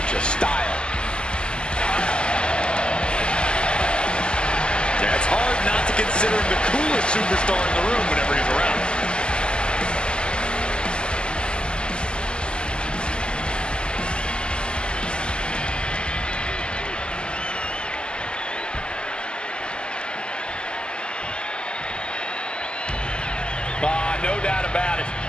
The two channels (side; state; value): right; late; 0.049 ms